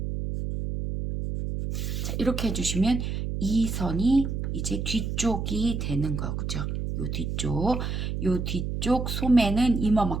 자, 이렇게 해주시면 이 선이 이제 뒤쪽이 되는 거죠. 요 뒤쪽 소매는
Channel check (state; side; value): noise; right; hum, 3 dB below the sound